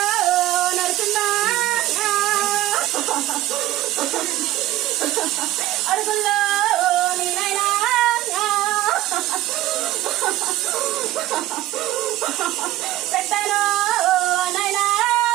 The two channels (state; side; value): quieter; left; 15.3 dB